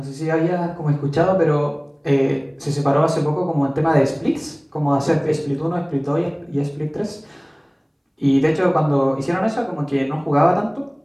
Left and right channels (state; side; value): identical; both; correlation 1.00